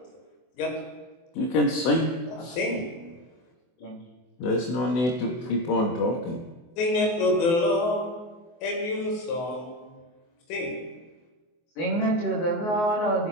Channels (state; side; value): late; right; 24 ms